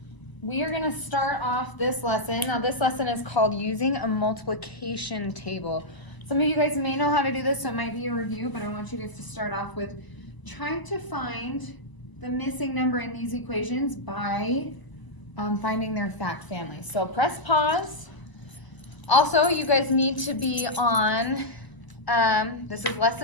we are going to start off this lesson. Now, this lesson is called Using a Multiplication Table. Some of you guys may know how to do this, so it might be a review, but I want you guys to start off with trying to find the missing number in these equations by finding their fact family. So press pause. Also, you guys need to be on, this is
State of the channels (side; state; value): right; late; 1.0 ms